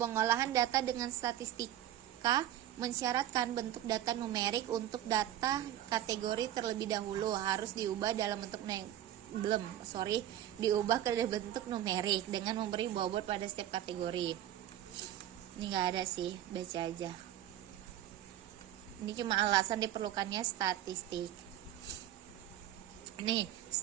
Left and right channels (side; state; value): left; quieter; 12.2 dB